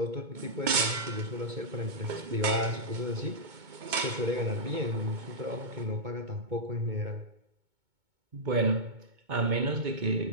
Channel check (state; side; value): late; left; 2.2 ms